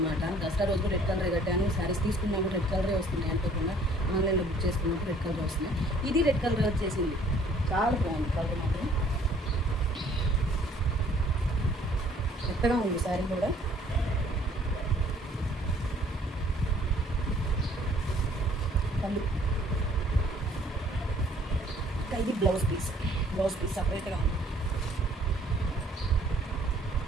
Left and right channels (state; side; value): normal; both; correlation 0.58